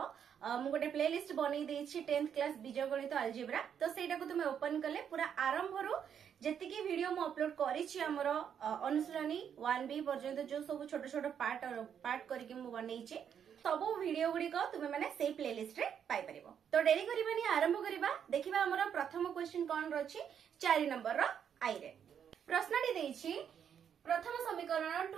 मु गोटे प्लेलिस्ट बनै देछि 10th क्लास बीजगणित अलजेब्रा। तो सेटा को तुमे ओपन कले पूरा आरंभ रु जेतिकी वीडियो मु अपलोड करिछि हमरो अनुशीलनी 1B पर्यंत जो सब छोट छोट पार्ट करके मु बनैछि सब वीडियो गुडी को तुमे माने सेही प्लेलिस्ट रे पाई परिबो। तो डेरी करिबानी आरंभ करिबा। देखिबा हमरो प्रथम क्वेश्चन कोन रछि 4 नंबर रो आई रे प्रश्नटी देछि प्रथम समीकरण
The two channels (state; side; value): quieter; left; 8.3 dB